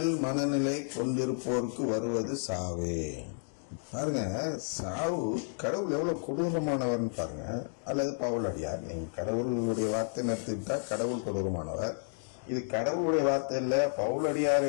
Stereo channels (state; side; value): silent; right; digital silence